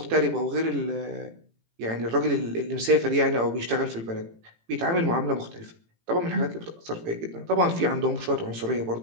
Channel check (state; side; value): late; left; 18 ms